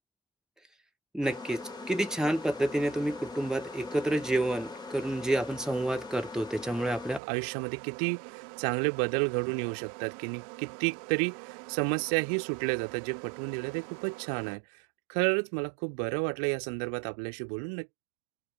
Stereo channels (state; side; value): drops out; left; at 7.2 s